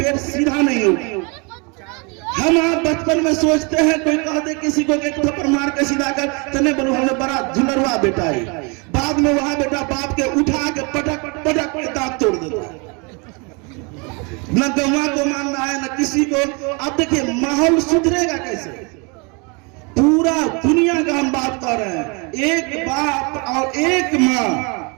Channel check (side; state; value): left; quieter; 31.5 dB